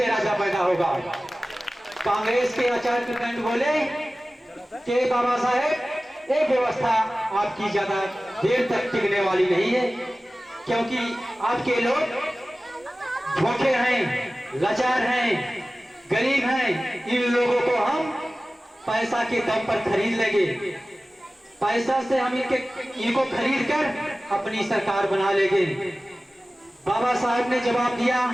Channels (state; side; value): normal; both; correlation 0.97